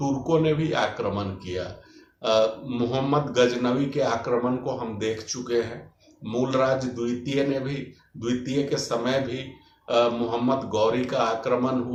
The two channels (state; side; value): identical; both; correlation 1.00